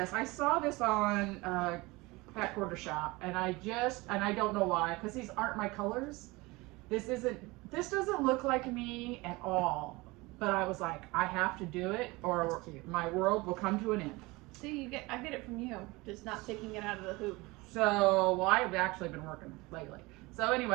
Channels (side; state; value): left; quieter; 22.9 dB